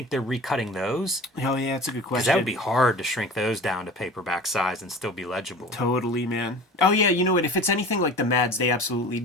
they're recutting those? Oh yeah, that's a good question. Because that would be hard to shrink those down to paperback size and still be legible. Totally, man. Oh yeah, you know what? If it's anything like the Mads, they absolutely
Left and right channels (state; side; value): normal; both; correlation 0.39